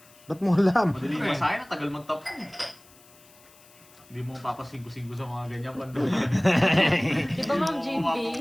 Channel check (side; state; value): left; noise; hiss, 26 dB below the sound